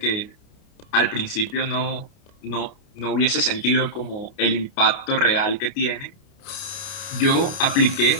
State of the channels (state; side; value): late; right; 29 ms